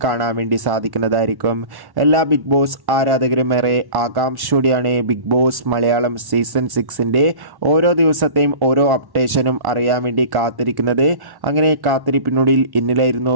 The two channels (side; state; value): left; late; 1.1 ms